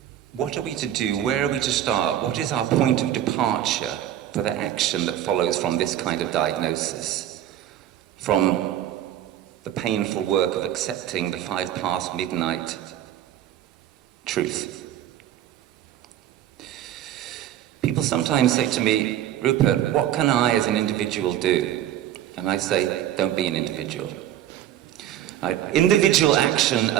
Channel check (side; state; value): left; quieter; 11.7 dB